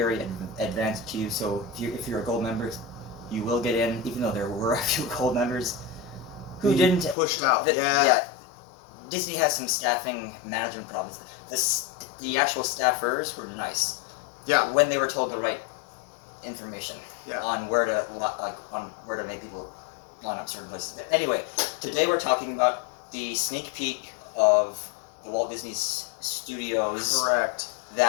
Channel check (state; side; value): drops out; right; at 7.2 s